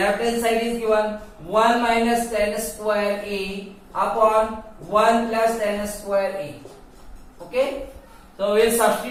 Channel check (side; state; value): both; identical; correlation 1.00